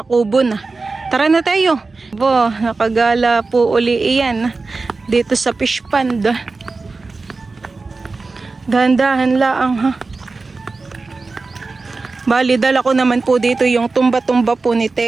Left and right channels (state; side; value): quieter; left; 3.9 dB